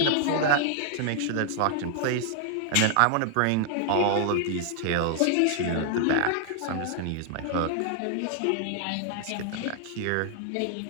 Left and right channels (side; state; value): both; different; correlation 0.00